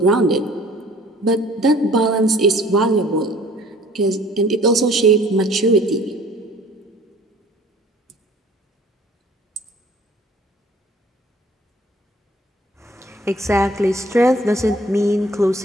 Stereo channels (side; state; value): both; normal; correlation 0.53